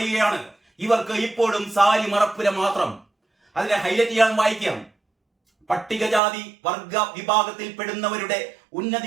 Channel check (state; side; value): drops out; left; at 6.2 s